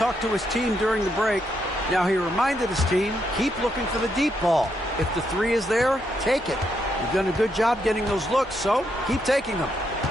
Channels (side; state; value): both; normal; correlation 0.79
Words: to his team during the break. Now, he reminded his team, keep looking for the deep ball. If the three is there, take it. You've done a good job getting those looks, so keep taking them.